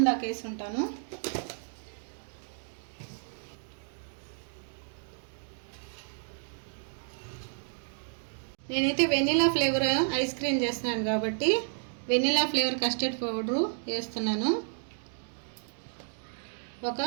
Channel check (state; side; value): silent; left; 57 dB below the other